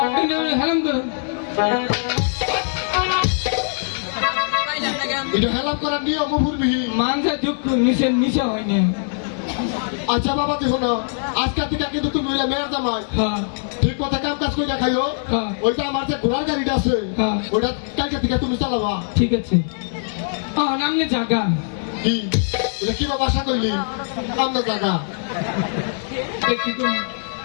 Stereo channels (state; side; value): silent; right; digital silence